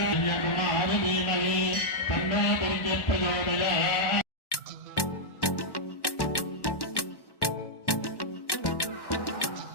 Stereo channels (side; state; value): right; late; 1.1 ms